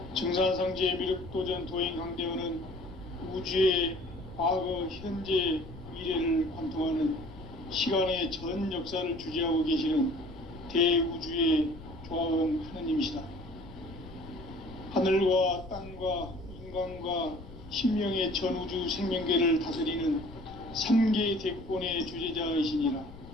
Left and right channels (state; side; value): noise; left; rumble, 16 dB below the sound